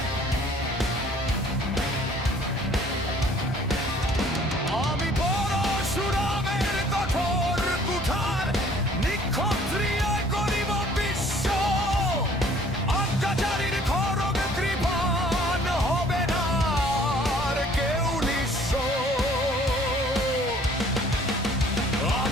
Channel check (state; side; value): normal; both; correlation 0.56